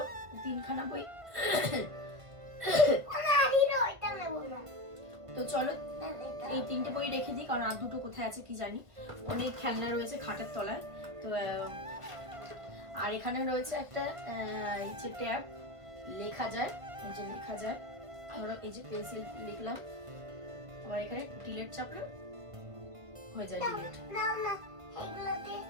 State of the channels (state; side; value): late; left; 1.7 ms